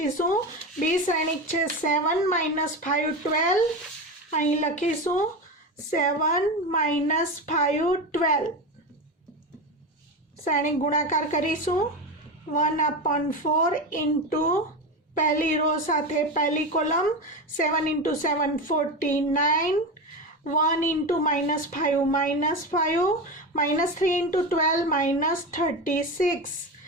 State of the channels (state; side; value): normal; both; correlation 0.20